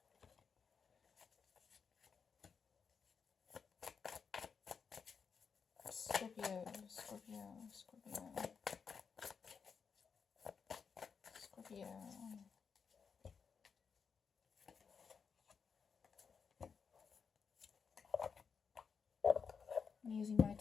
Scorpio, Scorpio, Scorpio, Scorpio. I'm using my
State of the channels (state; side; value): quieter; right; 6.0 dB